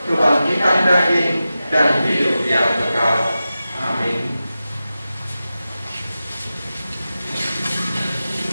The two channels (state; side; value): inverted; both; correlation -0.93